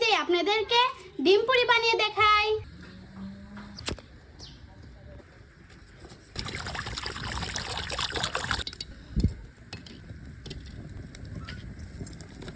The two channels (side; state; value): both; identical; correlation 1.00